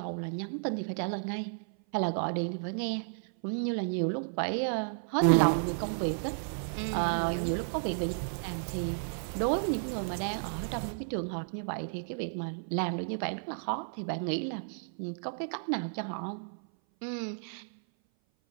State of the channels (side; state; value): left; silent; 56 dB below the other